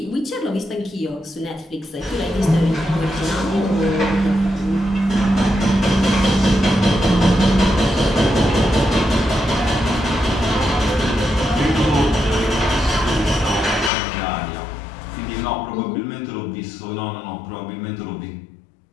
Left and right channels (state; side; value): drops out; right; at 13.9 s